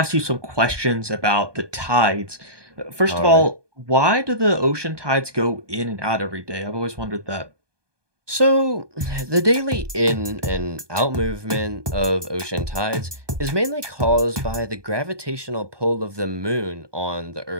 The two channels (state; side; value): late; left; 1.2 ms